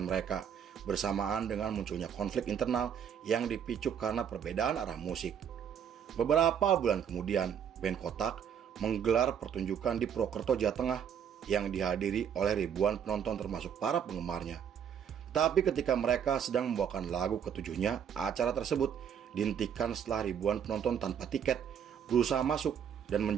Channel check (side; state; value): left; quieter; 8.3 dB